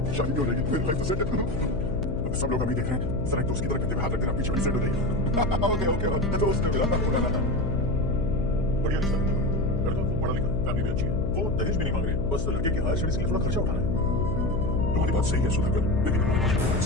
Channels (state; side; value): noise; left; hum, 4 dB below the sound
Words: शादी भी हो जाएगी, मेरी लाइफ तो सेट है। सब लोग हमें देख रहे हैं, जरा एक दोस्त की तरह करते हुए हाथ रख देना, पीछे बड़ी सेट हो जाएगी। ओके दोस्त ने मिला था। बढ़िया रिश्ता है। लड़का पढ़ा लिखा, फैमिली भी अच्छी है। वो दहेज भी नहीं मांग रहे, बस लड़के की हायर स्टडीज के लिए थोड़ा खर्चा उठाना है। तुम्हारी बात सही है सुधाकर, लेकिन हमारे पास कोई